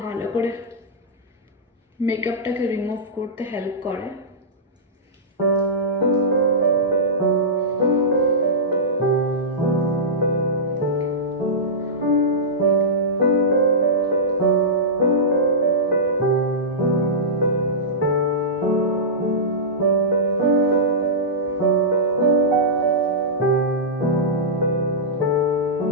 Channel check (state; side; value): normal; both; correlation -0.14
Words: ভালো করে মেকআপটাকে রিমুভ করতে হেল্প করে।